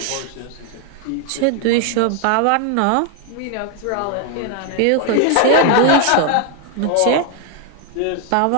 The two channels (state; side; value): different; both; correlation 0.01